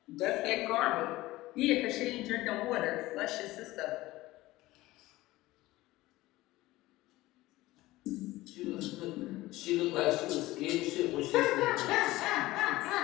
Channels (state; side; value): quieter; right; 18.1 dB